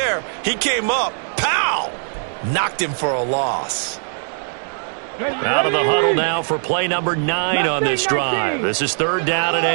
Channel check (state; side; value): silent; left; digital silence